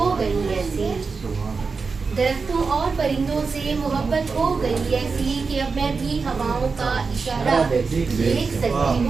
गई ऐसी, दरख्तों और परिंदों से मोहब्बत हो गई ऐसी, कि अब मैं भी हवाओं का इशारा देख सकती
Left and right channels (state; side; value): quieter; left; 4.7 dB